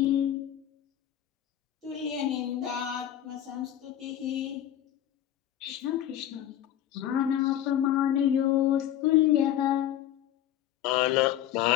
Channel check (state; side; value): quieter; right; 11.5 dB